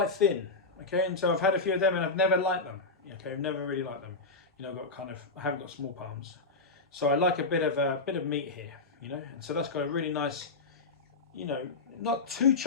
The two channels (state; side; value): quieter; right; 3.7 dB